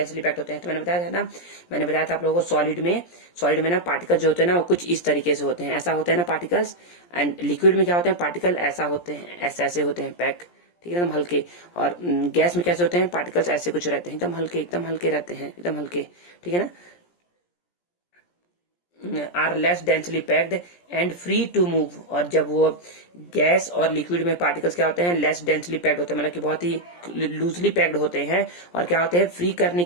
पैक्ड होते हैं। तो मैंने बताया था आप लोगों को सॉलिड में ना पार्टिकल जो होते हैं ना वो कुछ इस तरीके से होते हैं, ऐसा होते हैं ना पार्टिकल्स। एंड लिक्विड में क्या होते हैं, पार्टिकल ऐसा होते हैं, ऐसे होते हैं पैक। ठीक है, एकदम हल्के। और गैस में कैसे होते हैं, पार्टिकल्स ऐसे कुछ रहते हैं, एकदम हल्के रहते हैं, एकदम हल्के। ठीक है ना, are less densely packed and free to move. और जब वो गैस और लिक्विड में पार्टिकल्स क्या होते हैं, लेस डेंसली पैक्ड होते हैं, मतलब कि बहुत ही लूजली पैक्ड होते हैं। और क्या होते हैं, फ्री करने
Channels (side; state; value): right; late; 17 ms